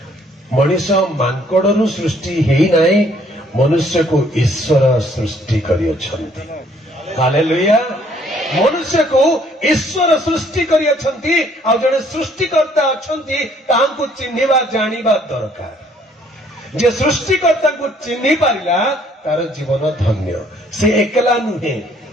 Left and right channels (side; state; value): both; normal; correlation 0.63